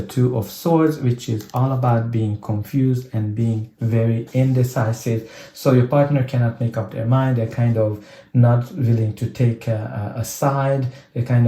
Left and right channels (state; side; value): identical; both; correlation 1.00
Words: Two of Swords, which is all about being confused and being very indecisive. So your partner cannot make up their mind. They're kind of not willing to take a side. They're kind